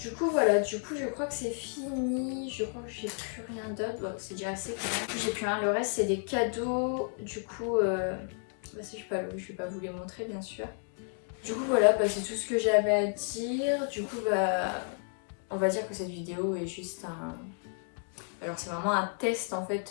coup voilà, je crois que c'est fini. Je crois que j'ai plus rien d'autre. Bon, c'est déjà assez. J'ai plus rien. Le reste c'est des cadeaux. Du coup, si je vais pas vous les montrer bien sûr. Du coup voilà, c'est tout ce que j'avais à dire. Du coup on va dire que cette vidéo est juste un... Alors c'est vraiment un test en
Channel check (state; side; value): silent; right; 56 dB below the other